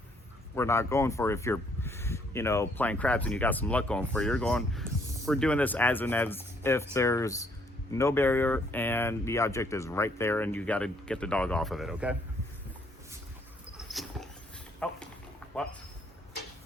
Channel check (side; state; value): both; normal; correlation 0.67